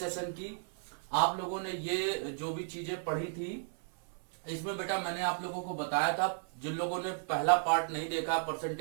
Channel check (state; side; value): silent; left; 55 dB below the other